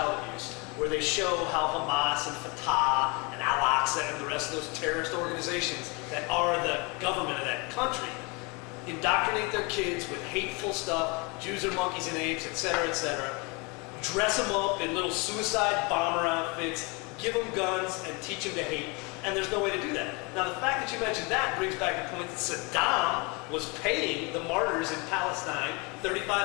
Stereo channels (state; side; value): quieter; right; 29.3 dB